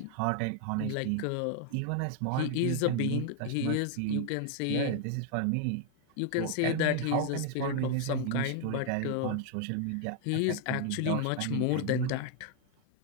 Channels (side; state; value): both; different; correlation 0.00